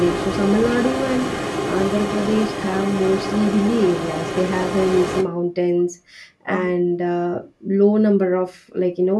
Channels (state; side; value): identical; both; correlation 1.00